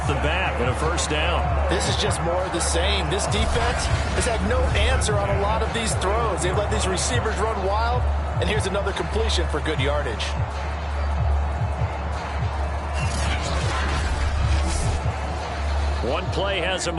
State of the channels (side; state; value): both; identical; correlation 1.00